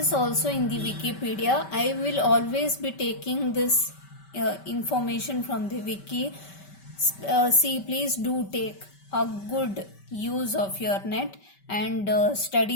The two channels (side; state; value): right; late; 5.2 ms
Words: also in the Wikipedia. I will always be taking this information from the wiki. See, please do take a good use of your net and